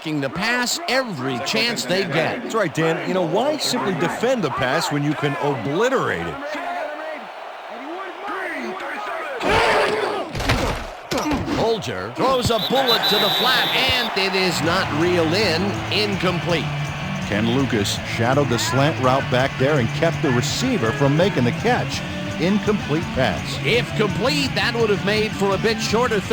the pass every chance they get. That's right, Dan. You know, why simply defend the pass when you can obliterate it? Bolger throws a bullet to the flat, and it is not reeled in. Incomplete. Ken Lucas shadowed the slant route back there and kept the receiver from making the catch. Incomplete pass. If complete, that would have made for a bit shorter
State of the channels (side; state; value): both; identical; correlation 1.00